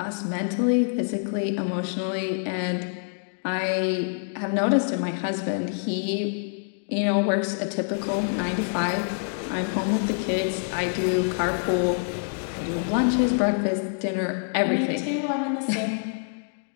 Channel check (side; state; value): right; silent; digital silence